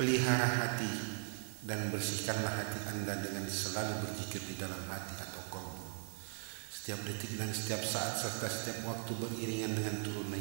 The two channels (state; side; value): silent; left; digital silence